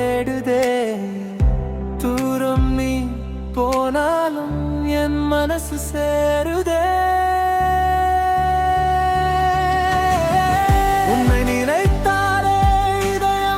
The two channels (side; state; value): both; identical; correlation 1.00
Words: தூரம் நீ போனாலும் என் மனசு சேருதே. உன்னை நினைத்தாலே